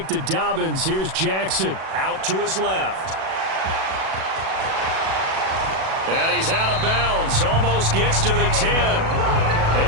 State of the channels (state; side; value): late; left; 37 ms